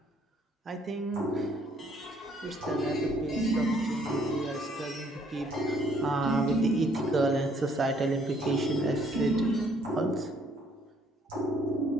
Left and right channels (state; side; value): normal; both; correlation 0.65